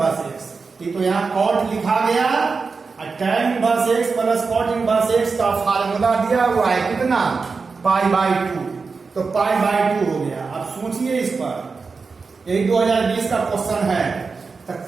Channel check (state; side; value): quieter; left; 4.6 dB